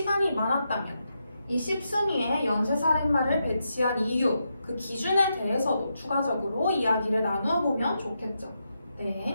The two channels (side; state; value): both; inverted; correlation -0.84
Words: 많았다면 이 10순위에 연쇄살인마를 배치한 이유, 그 기준에 대해서도 추가적으로 이야기를 나누어 보면 좋겠죠.